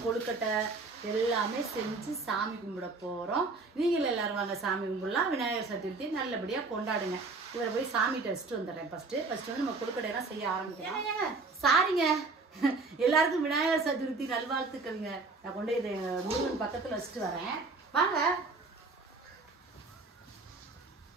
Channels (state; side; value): quieter; left; 3.8 dB